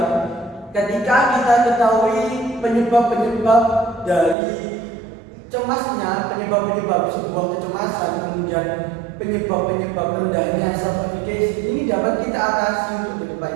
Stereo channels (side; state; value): left; drops out; at 4.4 s